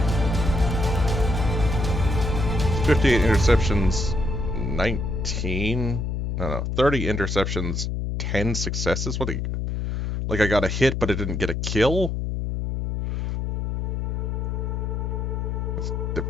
"58 interceptions, 19... No, 30 interceptions, 10 successes? What? Like I got a hit, but it didn't get a kill? That's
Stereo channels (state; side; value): noise; left; hum, 2 dB below the sound